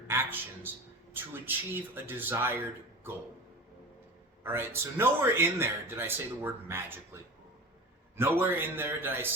actions to achieve a desired goal. All right, so nowhere in there did I say the word magically. Nowhere in there did I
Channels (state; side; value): normal; both; correlation 0.34